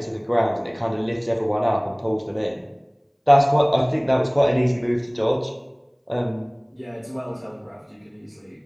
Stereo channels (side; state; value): both; identical; correlation 1.00